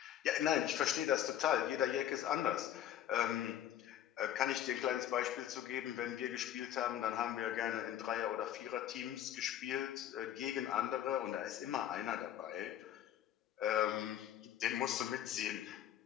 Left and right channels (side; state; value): right; quieter; 11.0 dB